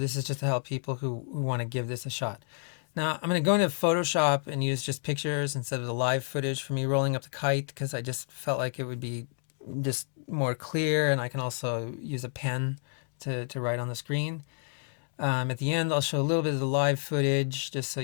is just to help people who want to give this a shot. Now I'm going to go into Photoshop and use just pictures instead of the live footage for me rolling up the kite, because I just felt like it would be just more clear, and I can also use a pen to write on the screen. At the end, I'll show a little bit of the live footage just so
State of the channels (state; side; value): silent; right; 56 dB below the other